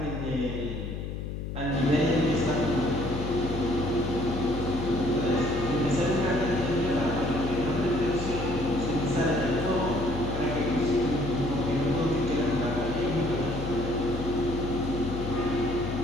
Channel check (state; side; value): noise; left; hum, 5 dB below the sound